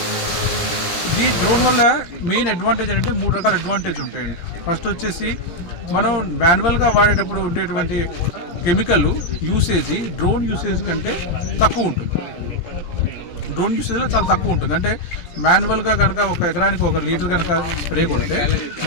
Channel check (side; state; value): right; late; 17 ms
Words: ఈ డ్రోన్ వల్ల మెయిన్ అడ్వాంటేజ్ అంటే 3 రకాల అడ్వాంటేజ్ ఉంటాయండి. ఫస్ట్ వచ్చేసి మనం మాన్యువల్గా వాడేటప్పుడు ఉండేటువంటి కెమికల్ యూసేజ్ డ్రోన్ యూసేజ్ కంటే తక్కువ ఉంటుంది. డ్రోన్ యూసేజ్లో చాలా తక్కువ ఉంటుంది. అంటే మాన్యువల్గా కనుక ఒక ఎకరానికి 1 లీటర్ కనుక స్ప్రే కొడితే